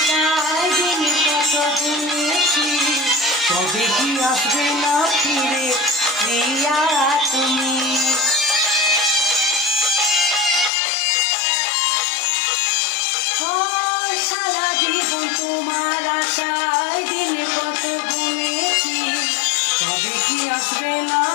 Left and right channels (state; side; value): drops out; right; at 10.7 s